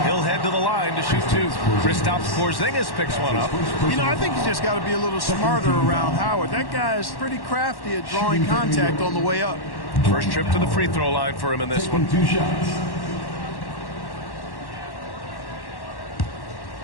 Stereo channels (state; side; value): late; right; 1.1 ms